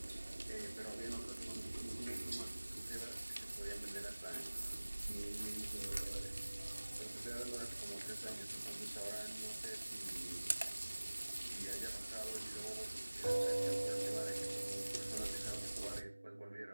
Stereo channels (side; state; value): both; inverted; correlation -1.00